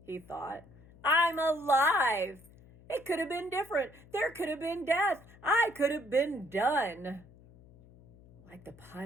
he thought. I'm alive. It could have been different. There could have been death. I could have been done. Like the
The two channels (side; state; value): left; noise; hum, 24 dB below the sound